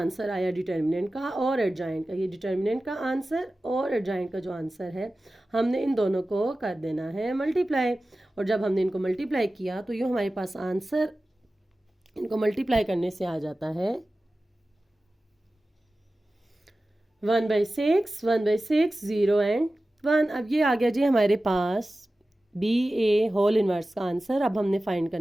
आया डिटर्मिनेंट का और एडजॉइंट का, ये डिटर्मिनेंट का आंसर और एडजॉइंट का जो आंसर है, हमने इन दोनों को कर देना है मल्टीप्लाई। और जब हमने इनको मल्टीप्लाई किया तो ये हमारे पास आंसर इनको मल्टीप्लाई करने से आ जाता है 1/6 1/6 0 एंड 1। अब ये आ गया जी हमारे पास बी ए होल इनवर्स का आंसर। अब हमने फाइंड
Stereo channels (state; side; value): normal; both; correlation 0.95